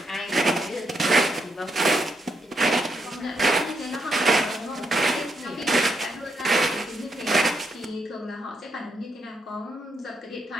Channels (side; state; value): both; normal; correlation 0.79